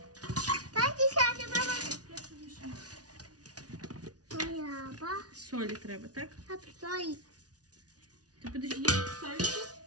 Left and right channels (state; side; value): late; left; 0.68 ms